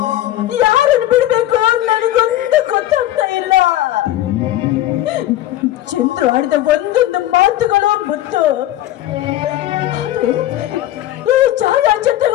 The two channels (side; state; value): right; quieter; 14.1 dB